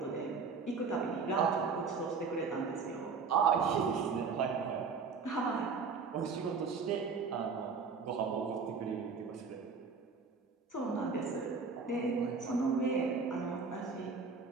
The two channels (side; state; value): left; quieter; 5.1 dB